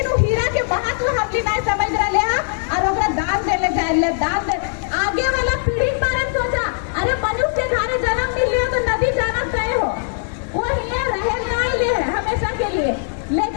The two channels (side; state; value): right; silent; digital silence